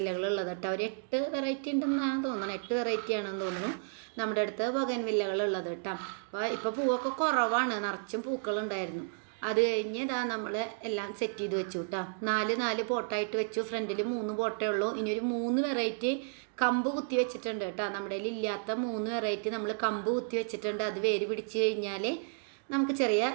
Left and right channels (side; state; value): left; silent; digital silence